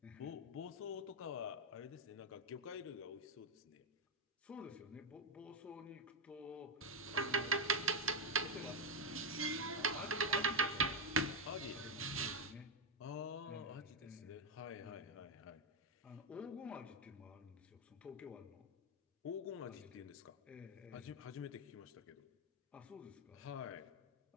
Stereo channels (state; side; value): normal; both; correlation 0.04